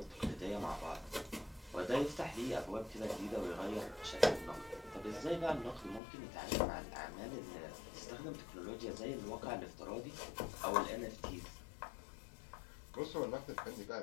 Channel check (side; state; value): right; drops out; at 6.0 s